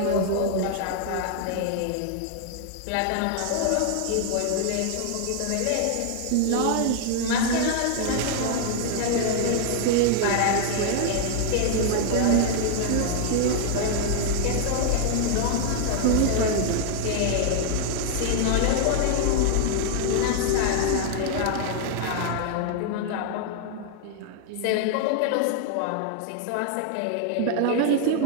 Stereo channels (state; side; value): different; both; correlation 0.00